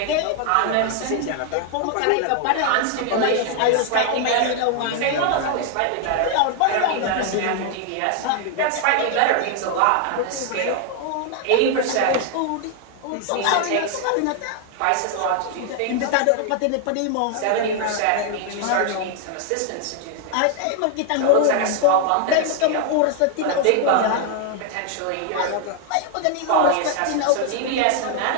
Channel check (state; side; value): different; both; correlation 0.00